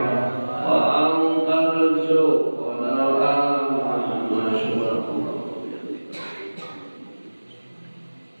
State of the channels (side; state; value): both; inverted; correlation -1.00